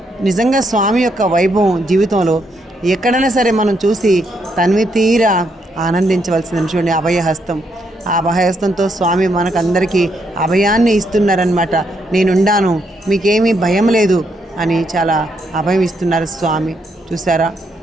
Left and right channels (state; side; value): normal; both; correlation 0.76